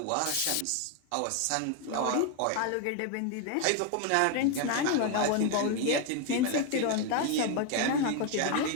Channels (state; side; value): different; both; correlation 0.01